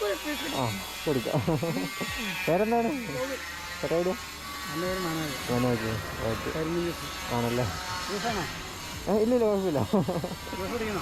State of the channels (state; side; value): identical; both; correlation 1.00